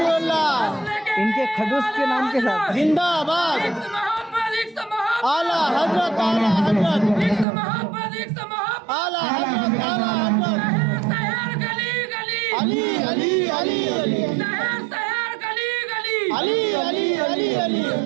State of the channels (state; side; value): drops out; left; at 7.5 s